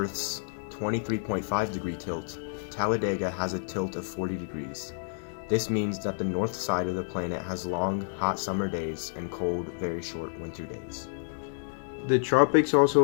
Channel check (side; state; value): right; silent; digital silence